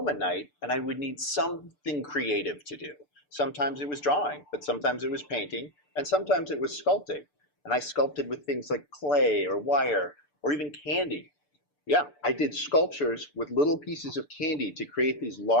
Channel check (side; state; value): right; late; 6.8 ms